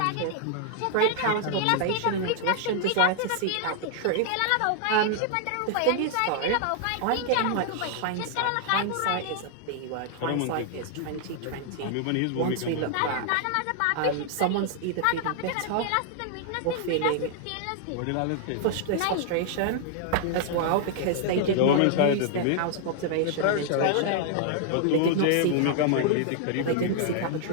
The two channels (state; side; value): different; both; correlation -0.01